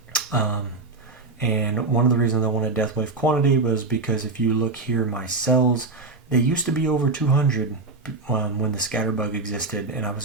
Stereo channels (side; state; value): left; quieter; 3.7 dB